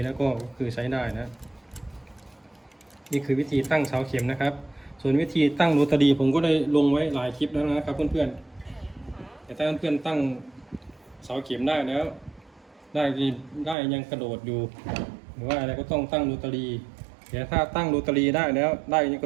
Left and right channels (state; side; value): drops out; left; at 13.8 s